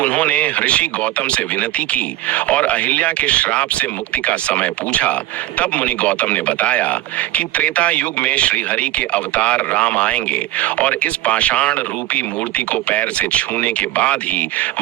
ऋषि गौतम से विनती की और अहिल्या के श्राप से मुक्ति का समय पूछा। तब मुनि गौतम ने बताया कि त्रेता युग में श्री हरि के अवतार राम आएंगे और इस पाषाण रूपी मूर्ति को पैर से छूने के बाद ही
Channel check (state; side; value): quieter; left; 15.3 dB